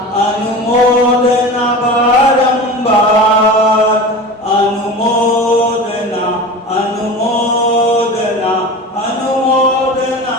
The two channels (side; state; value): both; normal; correlation 0.32